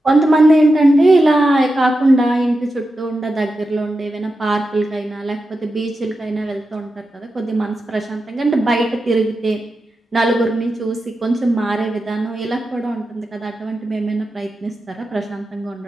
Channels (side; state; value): both; normal; correlation 0.90